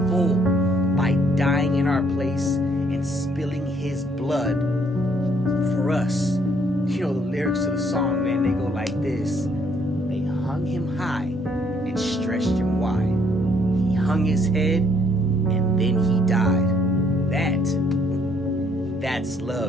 full by dying in our place and spilling his blood for us. You know, the lyrics to the song, man, they go like this. They hung him high and stretched him wide. He hung his head and then he died. That's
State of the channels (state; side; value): normal; both; correlation 0.67